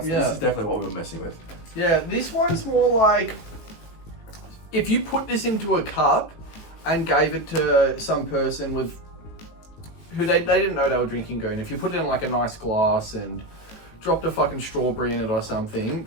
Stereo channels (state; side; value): late; right; 19 ms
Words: is definitely what we were messing with. Yeah, this one's more like if you put this into a cup and gave it to some person with who they didn't know they were drinking Goon. If you put it in like a nice glass and dropped a fucking strawberry in it or something,